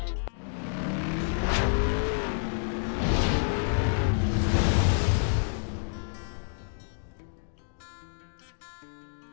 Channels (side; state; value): right; silent; digital silence